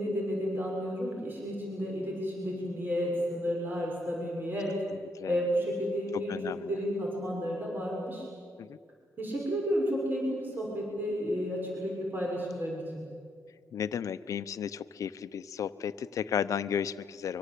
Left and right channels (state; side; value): normal; both; correlation 0.74